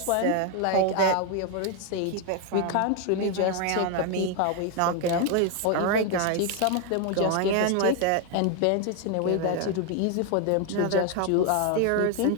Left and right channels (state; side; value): different; both; correlation 0.01